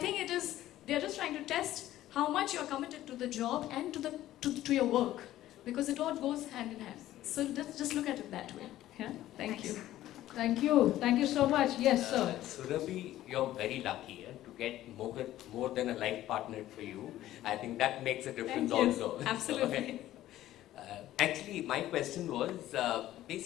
they're just trying to test how much you're committed to the job and to your work, because it all goes hand in hand. So just look at it that way. Yeah? Thank you. Thank you. Thank you so much. Yes, sir. Surabhi, you're very lucky to get more than a life partner for you. I think that makes a difference also. Absolutely. Actually, my question was,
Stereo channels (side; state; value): right; quieter; 14.1 dB